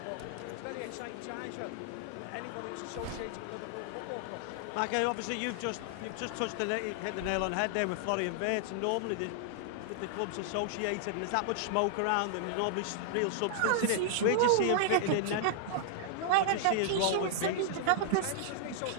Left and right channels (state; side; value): different; both; correlation -0.01